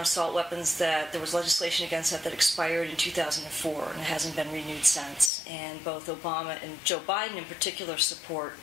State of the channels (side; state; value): right; drops out; at 5.3 s